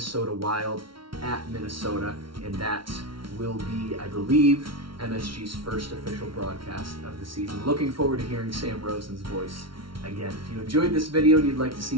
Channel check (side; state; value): left; late; 0.74 ms